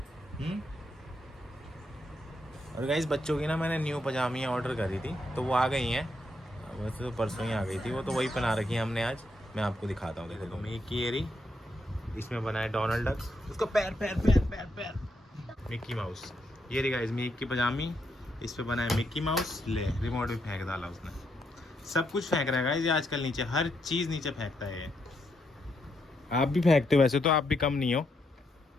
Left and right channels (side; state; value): both; normal; correlation 0.79